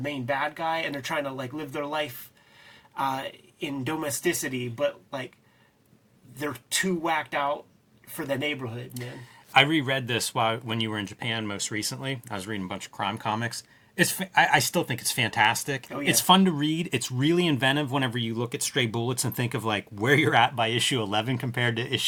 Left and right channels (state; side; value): identical; both; correlation 1.00